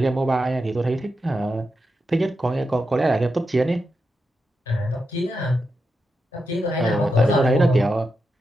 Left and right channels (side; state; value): both; normal; correlation 0.87